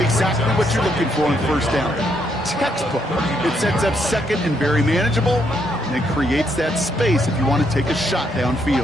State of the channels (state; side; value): normal; both; correlation 0.75